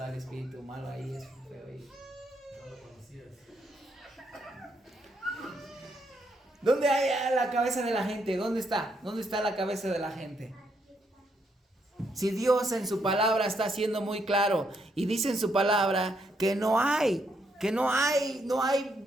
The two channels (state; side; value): normal; both; correlation 0.76